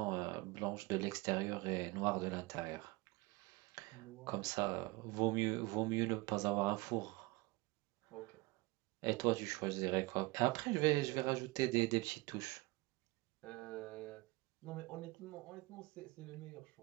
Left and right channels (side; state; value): left; quieter; 23.2 dB